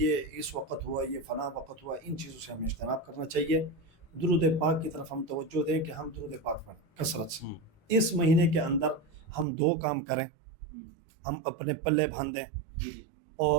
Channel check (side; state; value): left; drops out; at 9.5 s